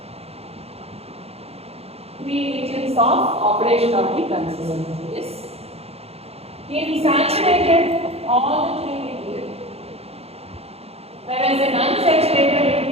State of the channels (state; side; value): late; left; 0.29 ms